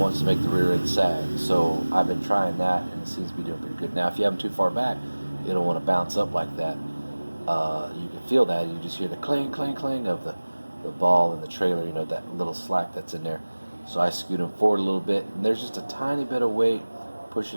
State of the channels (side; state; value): both; inverted; correlation -1.00